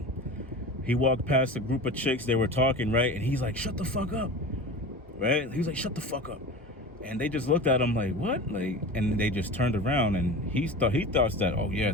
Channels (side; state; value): both; normal; correlation 0.32